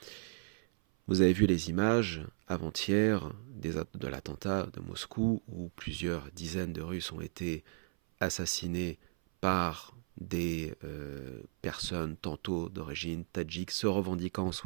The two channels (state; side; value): silent; left; 54 dB below the other